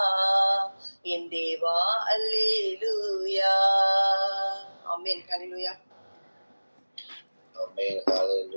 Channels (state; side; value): inverted; both; correlation -1.00